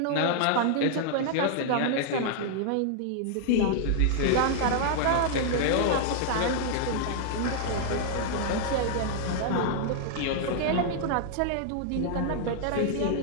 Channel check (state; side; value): different; both; correlation -0.01